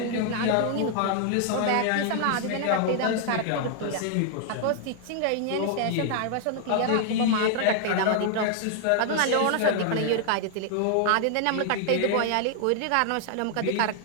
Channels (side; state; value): both; different; correlation 0.00